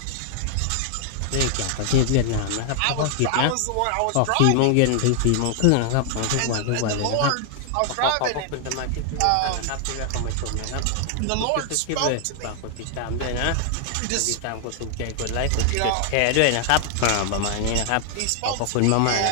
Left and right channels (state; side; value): different; both; correlation 0.00